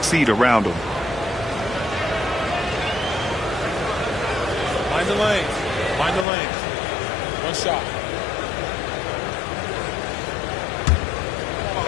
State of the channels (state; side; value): drops out; right; at 6.2 s